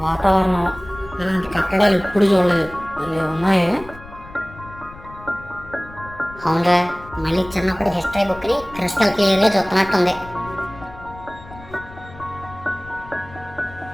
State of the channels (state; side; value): noise; left; rumble, 18 dB below the sound